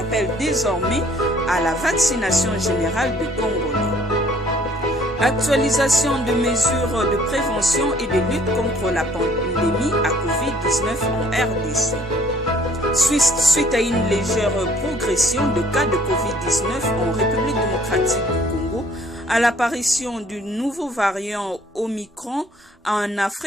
désormais à la vaccination générale des Congolais. Actualisation de mesures de prévention et de lutte contre la pandémie à Covid-19 en RDC. Suite à une légère progression de cas de Covid-19 en République démocratique du Congo, à l'apparition du nouveau variant Omicron en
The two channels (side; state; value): both; normal; correlation 0.59